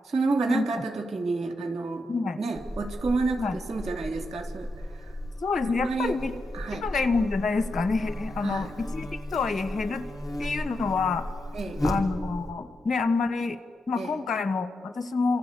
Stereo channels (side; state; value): both; normal; correlation 0.85